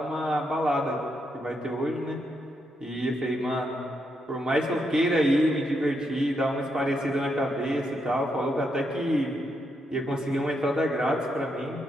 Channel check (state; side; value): normal; both; correlation 0.80